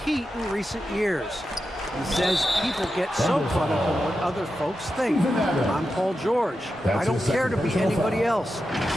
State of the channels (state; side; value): normal; both; correlation 0.90